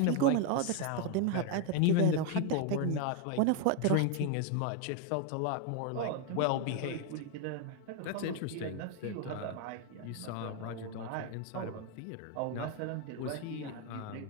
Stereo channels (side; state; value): both; different; correlation 0.01